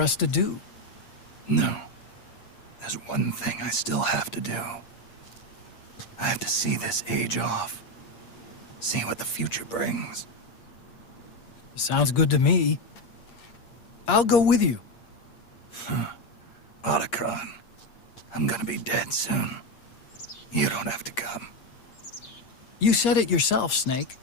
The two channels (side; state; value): right; late; 8.6 ms